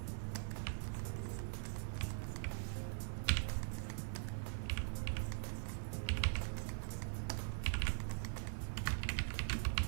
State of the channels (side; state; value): left; silent; digital silence